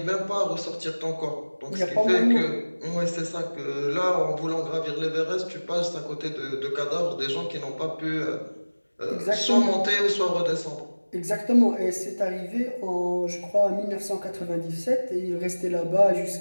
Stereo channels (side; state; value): both; inverted; correlation -1.00